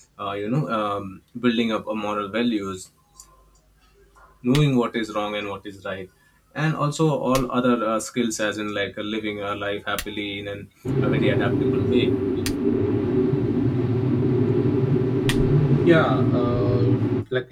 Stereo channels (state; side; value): identical; both; correlation 1.00